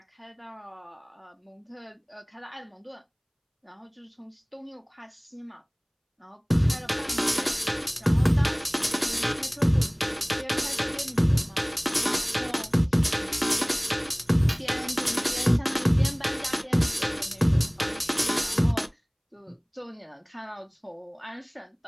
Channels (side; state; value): both; identical; correlation 1.00